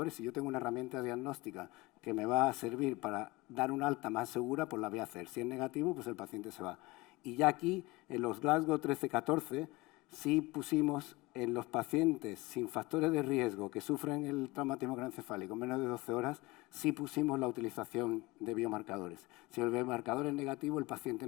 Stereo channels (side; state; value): right; quieter; 22.2 dB